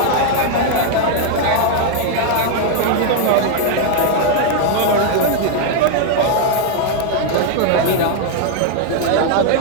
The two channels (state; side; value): different; both; correlation 0.00